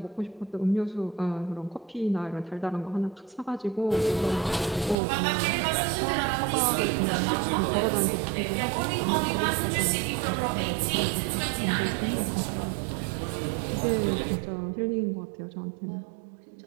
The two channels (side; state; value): left; drops out; at 5.0 s